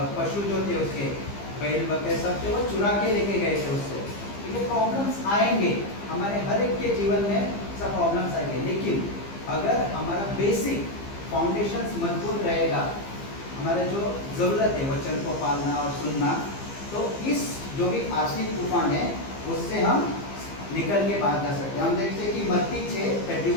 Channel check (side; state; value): right; late; 15 ms